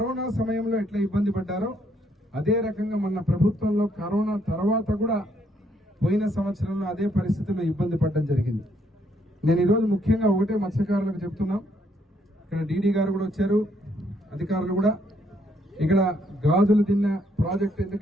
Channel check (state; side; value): normal; both; correlation 0.71